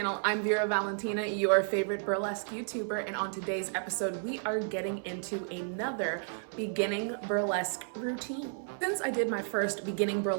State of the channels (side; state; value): left; silent; 56 dB below the other